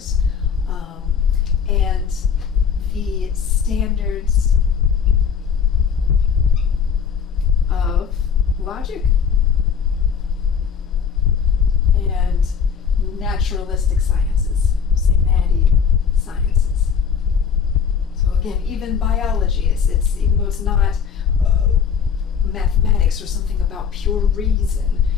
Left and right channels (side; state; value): right; quieter; 7.0 dB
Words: and the standards of logic and naturalistic sciences, say natty sciences. So again, even biology, it's even though it's not mathematics or something about pure reason,